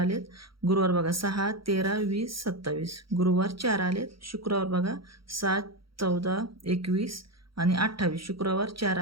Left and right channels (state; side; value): late; left; 0.74 ms